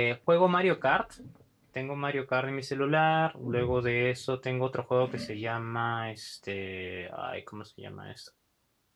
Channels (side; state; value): both; identical; correlation 1.00